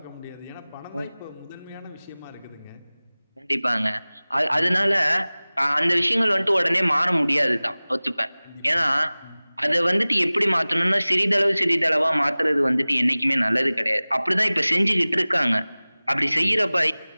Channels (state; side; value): inverted; both; correlation -0.99